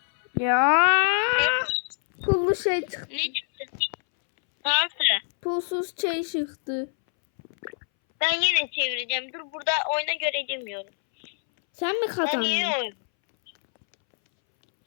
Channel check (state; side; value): silent; right; 62 dB below the other